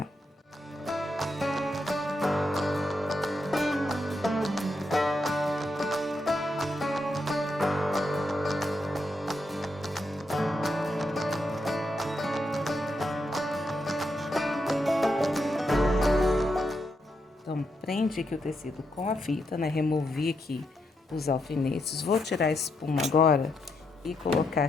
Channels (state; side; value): normal; both; correlation 0.81